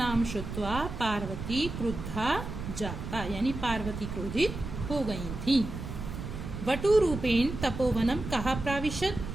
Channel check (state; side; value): noise; right; rumble, 7 dB below the sound